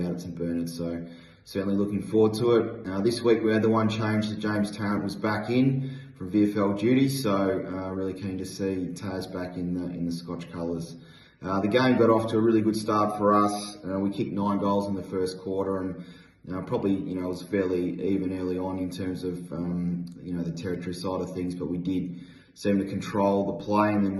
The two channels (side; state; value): both; identical; correlation 1.00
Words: at St Bernard's, so certainly looking forward to it. This week we had the one change that James Tarrant was back in from VFL duty, so really keen to see Taz back in the Scotch colours. The game got off to a really good start for us. We kicked 9 goals in the first quarter, and probably it was fairly even early on in terms of the territory side of things, but we did seem to control the play, and then